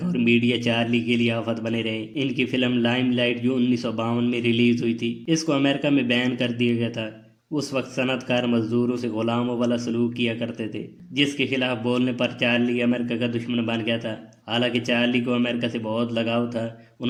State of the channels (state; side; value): identical; both; correlation 1.00